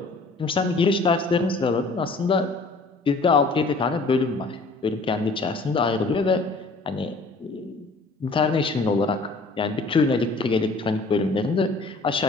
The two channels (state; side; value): quieter; right; 3.5 dB